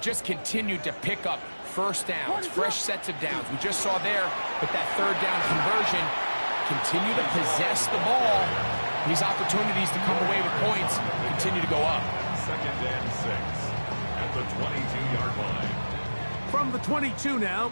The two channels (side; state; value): both; inverted; correlation -1.00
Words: just continued to pick up first downs, fresh sets of downs. We just saw there with that third down conversion, continue to possess the ball. These opportunities to come away with points continue to go up. Second and 6 at the 22-yard line. From the 22 now,